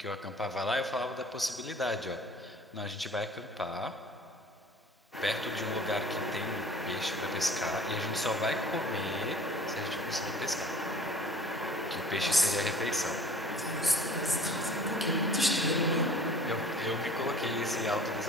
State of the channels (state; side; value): normal; both; correlation 0.48